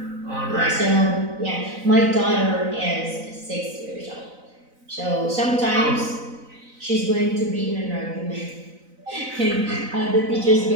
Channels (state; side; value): late; left; 4.0 ms